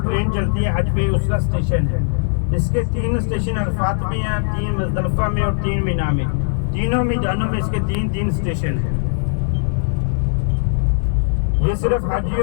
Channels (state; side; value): silent; right; digital silence